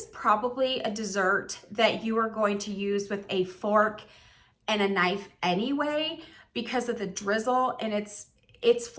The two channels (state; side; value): identical; both; correlation 1.00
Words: probably a dessert that you are going to use with a fork and a knife anyway, because of the drizzle, and it's